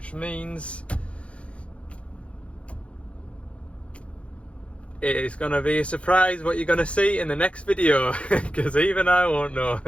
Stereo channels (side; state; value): right; late; 0.061 ms